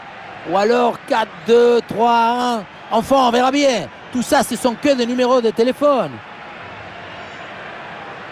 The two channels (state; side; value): identical; both; correlation 1.00